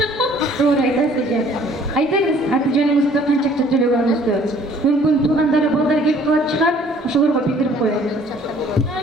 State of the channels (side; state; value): both; normal; correlation 0.56